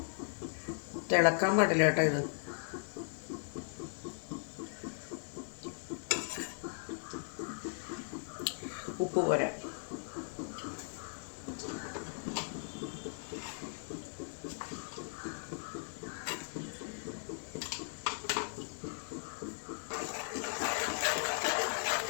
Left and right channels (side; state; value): right; silent; digital silence